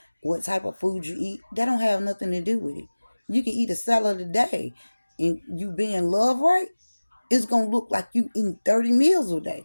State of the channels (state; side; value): inverted; both; correlation -1.00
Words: what type of food you eat, that don't have nothing to do with it. You can eat a salad a day, and you being loved right, it's gonna look like you eating 30 meals a